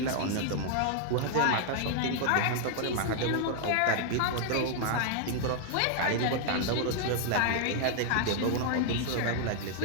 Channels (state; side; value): different; both; correlation 0.00